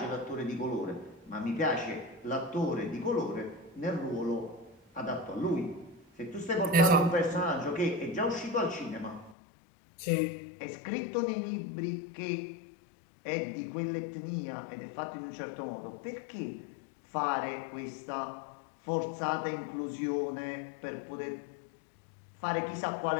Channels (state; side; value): drops out; right; at 9.3 s